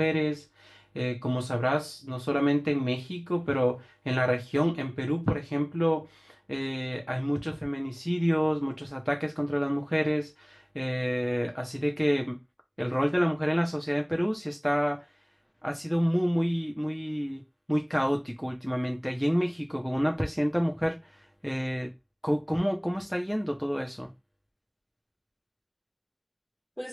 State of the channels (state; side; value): identical; both; correlation 1.00